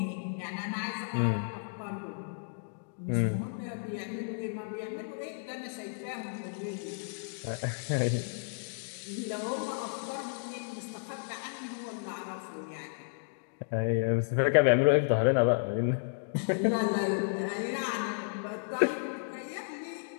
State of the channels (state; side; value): silent; right; digital silence